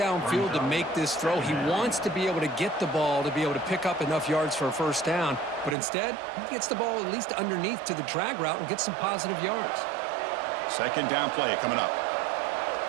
to make this throw. He wants to be able to get the ball to be able to pick up enough yards for a 1st down. But instead, he gets the ball at least underneath to the drag route and gets some positive yards. 2nd down play coming up.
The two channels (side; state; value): left; drops out; at 5.8 s